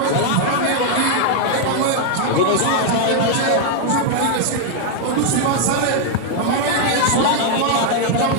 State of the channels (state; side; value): different; both; correlation 0.00